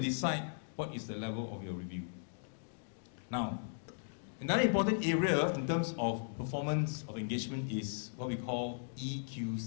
what is the level of your review. Now, another important area in terms of performance of engagement is what we call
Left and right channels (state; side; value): silent; right; digital silence